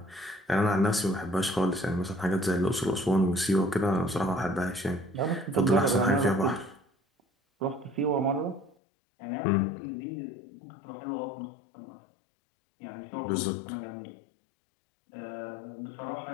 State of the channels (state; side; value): drops out; right; at 8.8 s